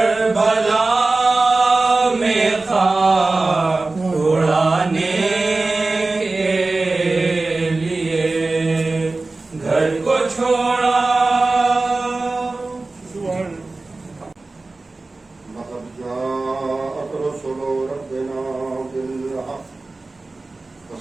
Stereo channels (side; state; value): left; quieter; 3.4 dB